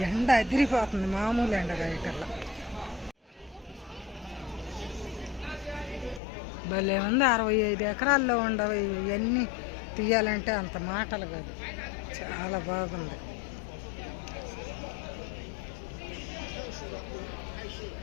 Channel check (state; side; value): drops out; right; at 6.2 s